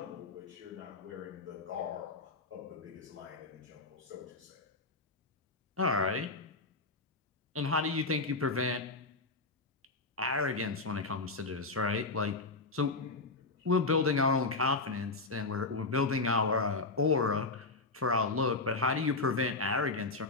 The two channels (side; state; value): right; quieter; 3.5 dB